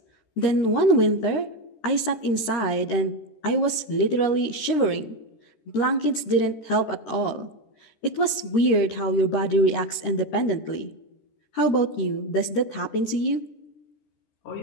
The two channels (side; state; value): right; late; 13 ms